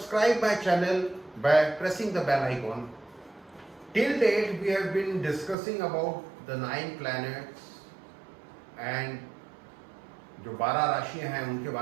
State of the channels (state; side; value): drops out; left; at 5.6 s